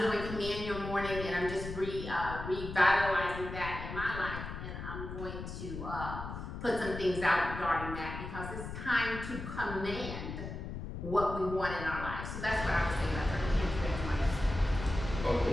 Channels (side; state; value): left; noise; rumble, 8 dB below the sound